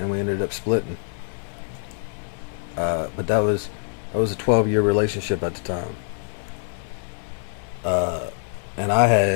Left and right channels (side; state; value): right; silent; digital silence